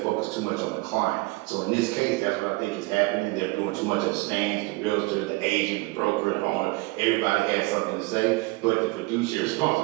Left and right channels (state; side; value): quieter; left; 23.9 dB